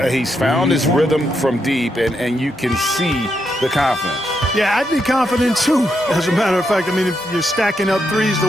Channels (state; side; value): normal; both; correlation 0.81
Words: He's found his rhythm from deep, and you can see the confidence. Yeah, I'd be confident too. As a matter of fact, I mean, if you're stacking up threes the